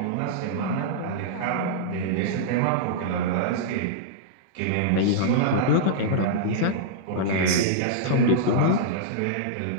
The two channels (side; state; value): both; different; correlation -0.02